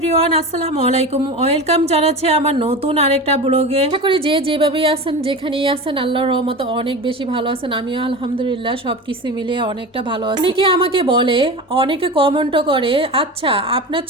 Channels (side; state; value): both; normal; correlation 0.29